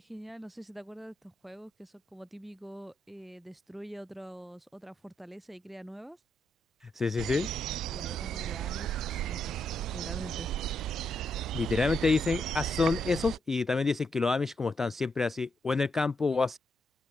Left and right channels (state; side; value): normal; both; correlation 0.80